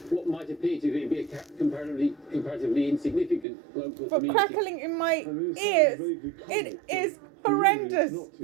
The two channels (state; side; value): drops out; left; at 3.5 s